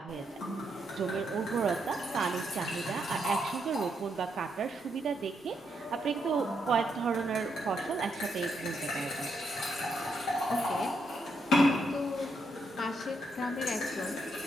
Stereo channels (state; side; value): normal; both; correlation 0.79